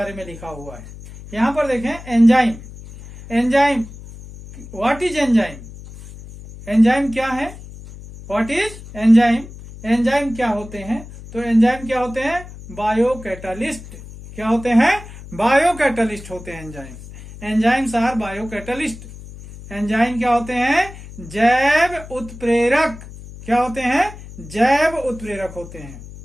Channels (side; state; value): left; noise; hum, 15 dB below the sound